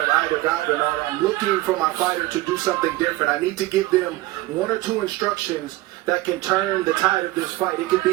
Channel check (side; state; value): left; quieter; 18.1 dB